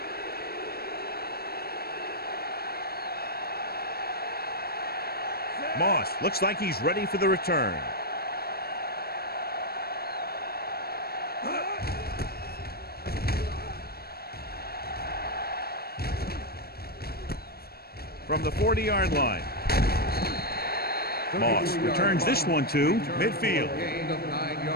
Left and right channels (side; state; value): right; late; 0.45 ms